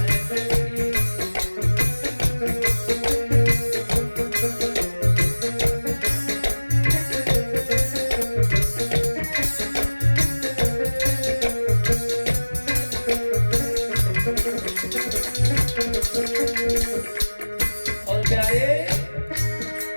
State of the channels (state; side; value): inverted; both; correlation -1.00